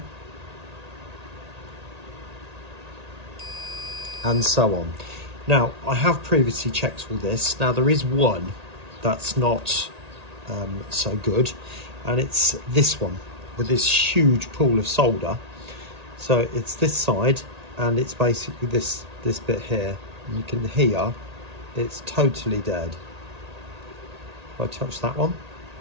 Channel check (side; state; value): left; late; 1.8 ms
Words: and so on. Now, I have previously checked all this. Now, there is one that's not so good, and it's this one with this huge pool of solder. So it's this side, and it's basically this bit here. And you can hear it's totally dead. If I touch that one,